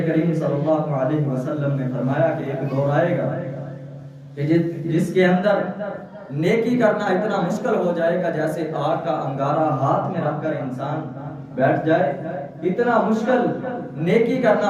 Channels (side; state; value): both; identical; correlation 1.00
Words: کریم صلی اللہ علیہ وسلم نے فرمایا کہ ایک دور آئے گا کہ جس کے اندر نیکی کرنا اتنا مشکل ہو جائے گا جیسے آگ کا انگارہ ہاتھ میں رکھ کر انسان بیٹھ جائے، اتنا مشکل نیکی